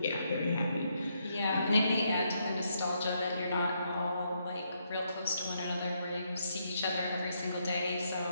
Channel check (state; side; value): inverted; both; correlation -0.77